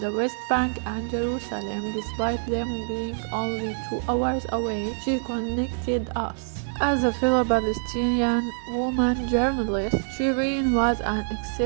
West Bank and Jerusalem, despite them being only 2 hours away, she connected us. As a fellow Palestinian woman journalist, Shireen was an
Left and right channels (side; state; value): left; silent; 61 dB below the other